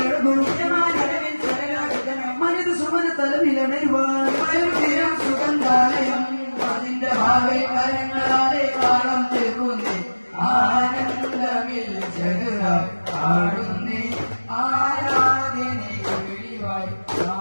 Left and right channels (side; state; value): both; inverted; correlation -1.00